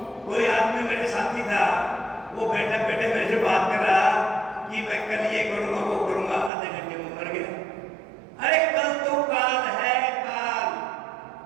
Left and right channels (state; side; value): drops out; left; at 6.5 s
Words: कोई आदमी मेरे साथी था, वो बैठे बैठे मेरे से बात कर रहा कि मैं कल ये करूंगा वो करूंगा, आधे घंटे में मर गया। अरे कल तो काल है, काल।